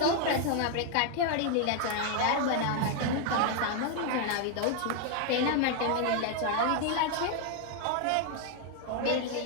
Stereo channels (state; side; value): different; both; correlation 0.00